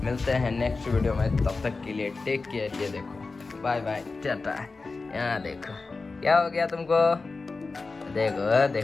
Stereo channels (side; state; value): right; quieter; 3.9 dB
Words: मिलते हैं नेक्स्ट वीडियो में, तब तक के लिए टेक केयर। ये देखो बाय बाय टाटा। यहाँ देखो क्या हो गया तुमको, देखो